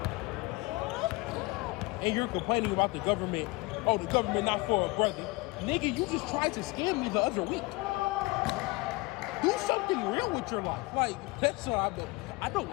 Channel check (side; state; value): right; quieter; 23.6 dB